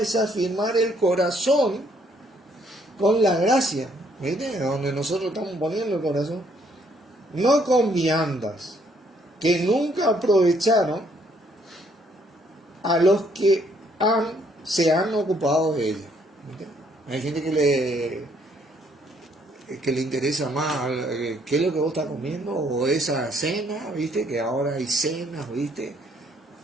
afirmar el corazón con la gracia. ¿Viste? Donde nosotros estamos poniendo el corazón. No con viandas, que nunca aprovecharon a los que se han ocupado de ellas. ¿Viste? Hay gente que le interesa más qué es lo que vos estás comiendo o esa cena, ¿viste? Que ahora hay cenas, ¿viste?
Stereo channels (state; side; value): normal; both; correlation 0.67